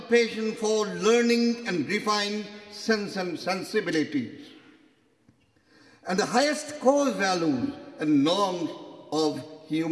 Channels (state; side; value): identical; both; correlation 1.00